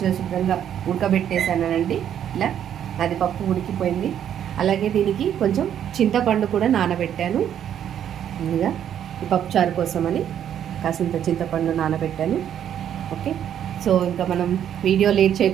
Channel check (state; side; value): quieter; left; 9.8 dB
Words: శుభ్రంగా ఉడకబెట్టేసానండి. ఇలా అది పప్పు ఉడికిపోయింది. అలాగే దీనికి కొంచెం చింతపండు కూడా నానబెట్టాను. ముందుగా ఈ పప్పుచారు కోసమని కాసింత చింతపండు నానబెట్టాను. ఓకే, సో ఇంకా మనం వీడియో లేట్